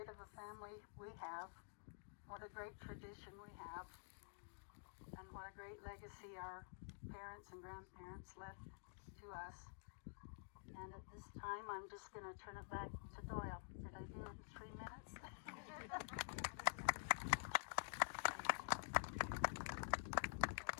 of a family we have, what a great tradition we have, and what a great legacy our parents and grandparents left to us. And at this time, I'm just going to turn it back to Doyle. Did I do it in 3 minutes?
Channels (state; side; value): silent; right; digital silence